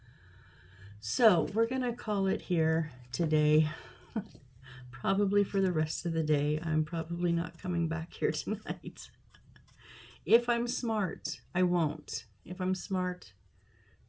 So we're gonna call it here today. Probably for the rest of the day. I'm probably not coming back here tonight. If I'm smart, I won't. If I'm smart,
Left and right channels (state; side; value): identical; both; correlation 1.00